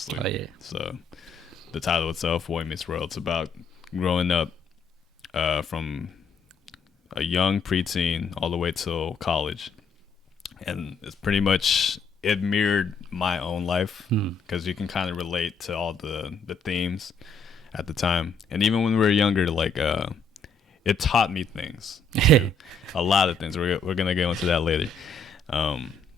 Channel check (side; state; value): right; quieter; 3.6 dB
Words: Oh, yeah. So the title itself, Boy Meets World, it's about growing up from a young preteen all the way till college. And it's pretty much, it mirrored my own life because you can kind of relate to all the themes at the time. And even when we were younger, like it taught me things, a lot of things. We're gonna get into that later.